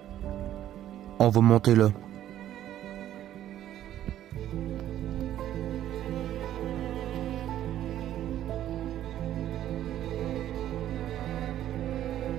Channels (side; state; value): left; quieter; 12.1 dB